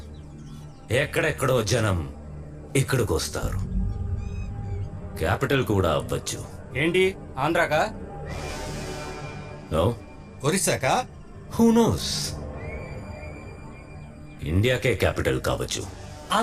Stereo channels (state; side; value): identical; both; correlation 1.00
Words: ఎక్కడెక్కడో జనం ఇక్కడికి వస్తారు. క్యాపిటల్ కూడా అవ్వచ్చు. ఏంటి ఆంధ్రాకా? నో, ఒరిస్సాకా? హూ నోస్, ఇండియాకే క్యాపిటల్ కావచ్చు.